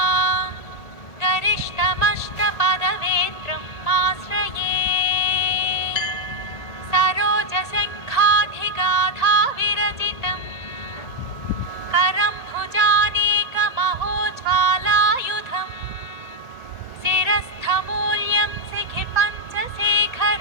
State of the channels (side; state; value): right; late; 1.8 ms